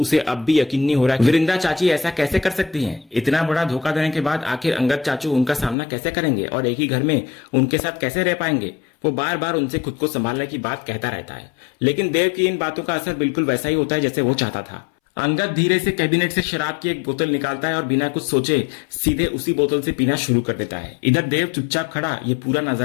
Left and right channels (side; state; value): right; drops out; at 5.8 s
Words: अब भी यकीन नहीं हो रहा है वृंदा चाची ऐसा कैसे कर सकती हैं। इतना बड़ा धोखा देने के बाद आखिर अंगद चाचू उनका सामना कैसे करेंगे और एक ही घर में उनके साथ कैसे रह पाएंगे। वो बार बार उनसे खुद को संभालने की बात कहता रहता है, लेकिन देव की इन बातों का असर बिल्कुल वैसा ही होता है जैसे वो चाहता था। अंगद धीरे से कैबिनेट से शराब की एक बोतल निकालता है और बिना कुछ सोचे सीधे उसी बोतल से पीना शुरू कर देता है। इधर देव चुपचाप खड़ा ये पूरा